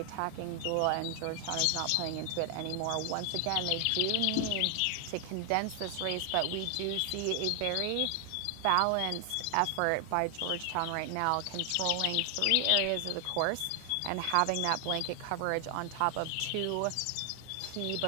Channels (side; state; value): both; different; correlation 0.00